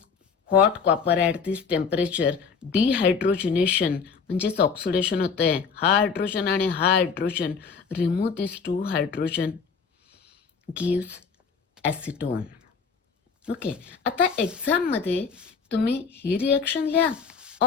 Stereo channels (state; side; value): quieter; right; 5.7 dB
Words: hot copper at this temperature, dehydrogenation म्हणजेच ऑक्सिडेशन होतं आहे. हा हायड्रोजन आणि हा hydrogen remove this 2 hydrogen gives acetone. Okay, आता एक्झाममध्ये तुम्ही ही रिएक्शन लिहा